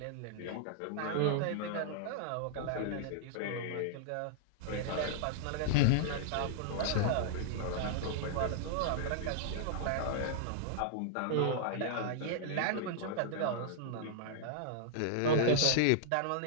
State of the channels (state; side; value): different; both; correlation -0.01